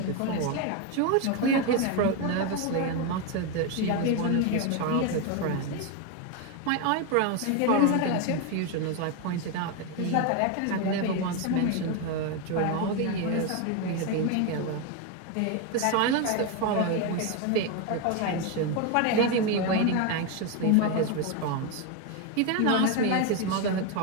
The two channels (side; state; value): both; different; correlation 0.02